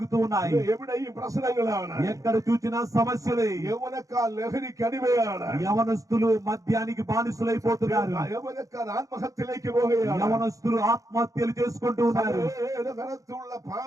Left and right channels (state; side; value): late; left; 0.16 ms